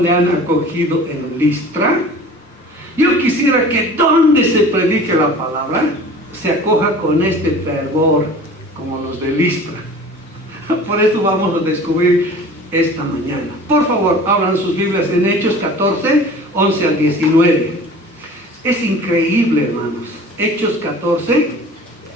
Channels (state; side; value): normal; both; correlation 0.43